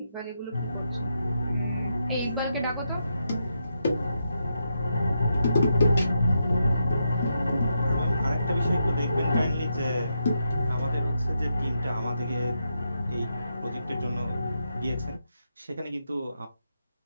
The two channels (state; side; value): inverted; both; correlation -0.82